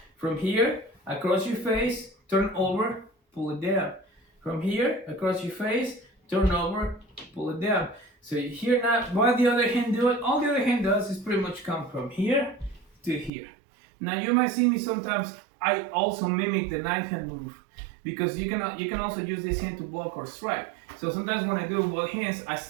From here, across your face, turn over, pull it down. From here, across your face, turn over, pull it down. So here now, what the other hand do it? All the other hand does is pretty much come from here to here. Now you might see me sometimes, I also mimic the knife hand move because you can also use this hand to block or strike. So sometimes when I do both hands,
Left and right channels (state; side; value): drops out; left; at 13.3 s